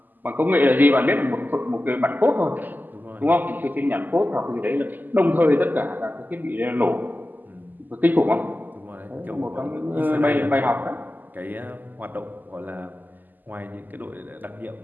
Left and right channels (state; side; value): late; left; 0.086 ms